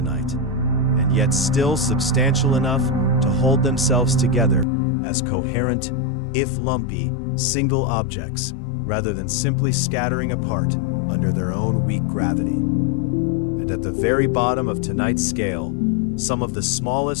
and yet still substantial enough to hold themselves together as coherent, if lumpy, single objects, rather than simply scattering apart under their own weak gravity. And at the very bottom of tonight's scale, some of the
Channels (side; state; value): right; drops out; at 4.7 s